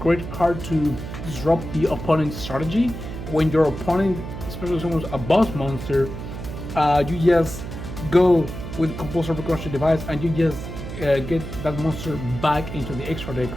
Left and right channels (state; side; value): noise; right; hum, 8 dB below the sound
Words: card to disrupt the opponent's strategy. When your opponent, especially someone's a boss monster, you just go with Compulsory Evacuation Device and you just get that monster back into the extra